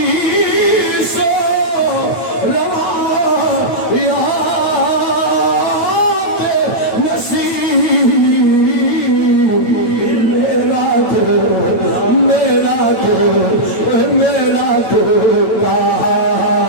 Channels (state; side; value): late; right; 9.0 ms